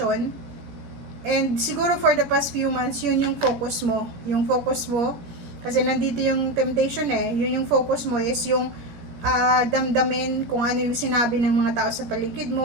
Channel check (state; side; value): late; left; 17 ms